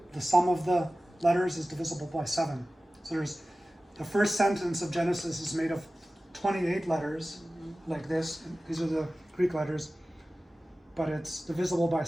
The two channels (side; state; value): both; normal; correlation 0.96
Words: The sum of the letters is divisible by 7. So there's the first sentence of Genesis is made of 28 letters, like this. These are the Greek letters, but it's divisible by